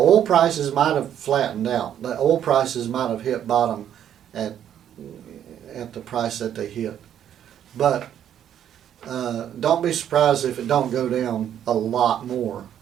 prices might have flattened out. The oil prices might have hit bottom at the price that they hit. But don't be surprised if it don't go down a lot more.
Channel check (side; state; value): left; quieter; 10.0 dB